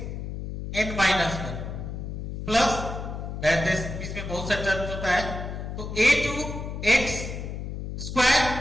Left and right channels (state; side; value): noise; left; hum, 6 dB below the sound